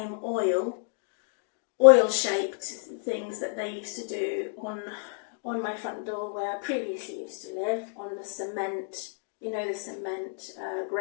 oil-shaped things that they used to do on my front door where I previously used to live, on the cement, the cement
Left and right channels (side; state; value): right; silent; 57 dB below the other